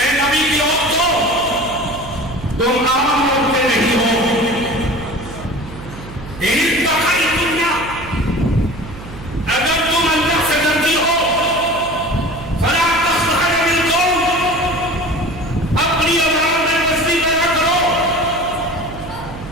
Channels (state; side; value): noise; right; hum, 14 dB below the sound